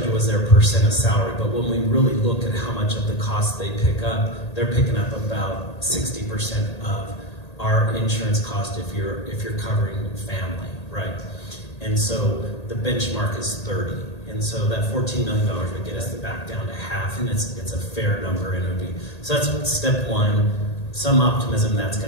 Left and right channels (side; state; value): right; late; 1.8 ms